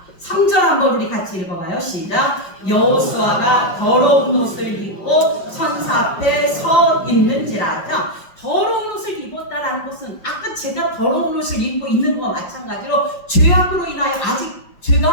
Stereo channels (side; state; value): right; late; 5.4 ms